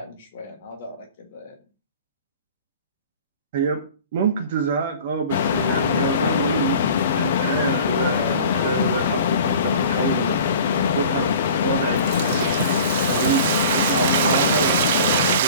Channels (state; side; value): inverted; both; correlation -0.43